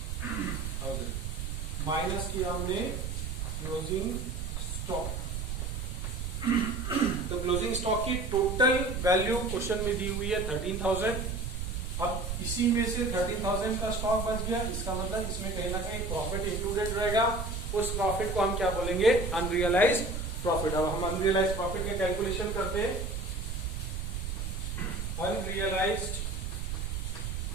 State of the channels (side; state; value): right; noise; rumble, 4 dB below the sound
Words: माइनस किया हमने क्लोजिंग स्टॉक। तो क्लोजिंग स्टॉक की टोटल वैल्यू क्वेश्चन में दी हुई है 13,000। अब इसी में से 13,000 का स्टॉक बच गया, इसका मतलब इसमें कहीं ना कहीं प्रॉफिट इंक्लूडेड रहेगा। उस प्रॉफिट को हम क्या बोलेंगे, अनरियलाइज्ड प्रॉफिट। अब हम अनरियलाइज्ड प्रॉफिट का कैलकुलेशन करते हैं। Unrealized